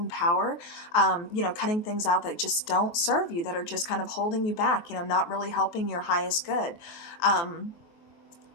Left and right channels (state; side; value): late; right; 23 ms